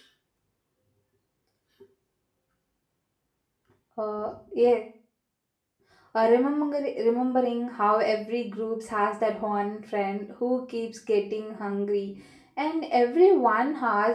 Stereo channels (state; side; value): identical; both; correlation 1.00